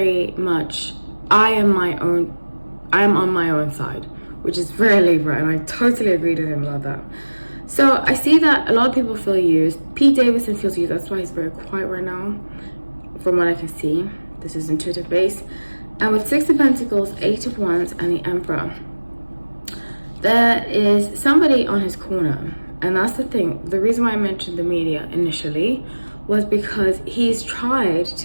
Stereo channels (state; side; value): inverted; both; correlation -1.00